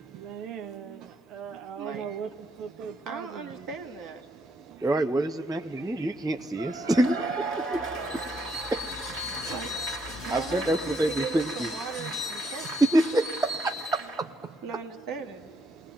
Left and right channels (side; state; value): both; normal; correlation 0.74